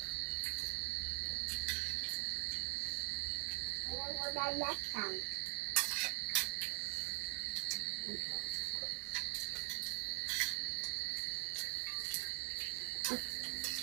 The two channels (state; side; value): quieter; left; 36.4 dB